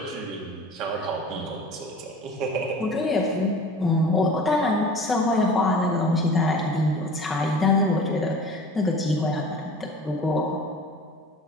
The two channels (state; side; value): normal; both; correlation 0.41